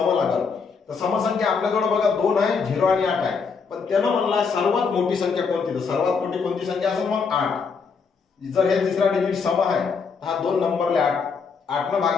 लागेल. तर समसंख्या आपल्याजवळ बघा 2 आहे, 0 आणि 8 आहे. पण त्यानं म्हणला सर्वात मोठी संख्या कोणती, तर सर्वात मोठी कोणती संख्या असेल मग 8. जर हे तिसरा डिजिट सम आहे, हा दोन नंबरले 8 न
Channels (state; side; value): quieter; right; 5.3 dB